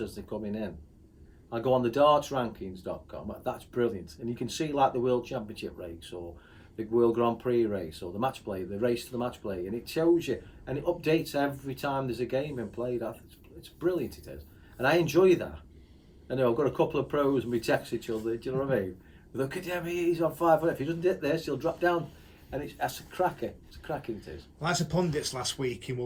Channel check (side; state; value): both; identical; correlation 1.00